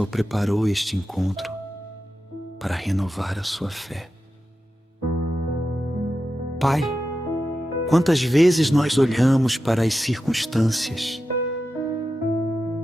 preparou este encontro para renovar a sua fé. Pai, quantas vezes nós olhamos para as circunstâncias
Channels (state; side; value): normal; both; correlation 0.90